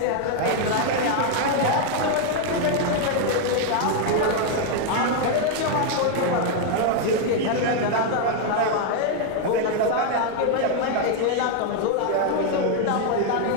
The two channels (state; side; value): different; both; correlation 0.00